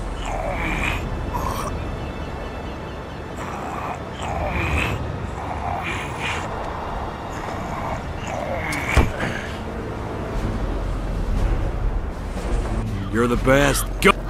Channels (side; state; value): both; identical; correlation 1.00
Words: You're the best. Go!